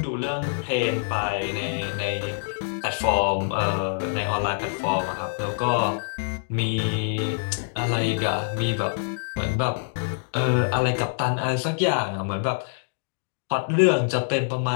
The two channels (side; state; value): right; silent; digital silence